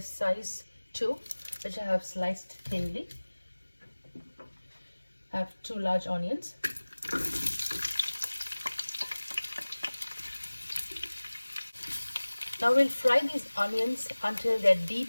size 2, which I have sliced thinly. I have 2 large onions. Now we'll fry these onions until they're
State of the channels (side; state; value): both; inverted; correlation -1.00